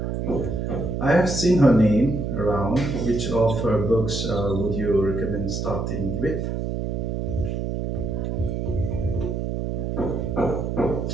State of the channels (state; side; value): noise; right; hum, 2 dB below the sound